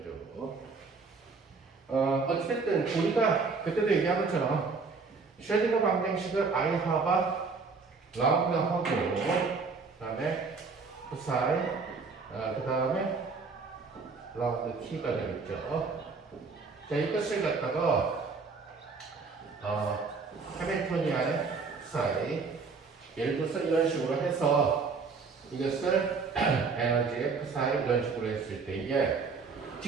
어쨌든 우리가 그때도 얘기한 것처럼 쉐딩거 방정식을 I 하바 라운드 하고 그 다음에 푸사이 그 다음에 라운드 t가 되겠죠. 자, 이것을 갖다가 해밀토니안의 푸사이, 예를 들어서 이런 식으로 해서 이것을 에너지의 푸사이 이런 식으로 했을 때에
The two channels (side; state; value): left; quieter; 4.7 dB